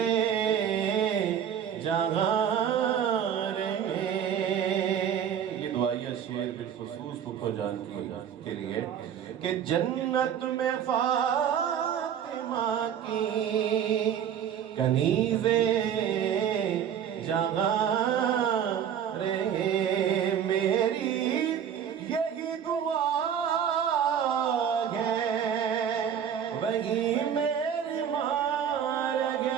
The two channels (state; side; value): quieter; left; 8.7 dB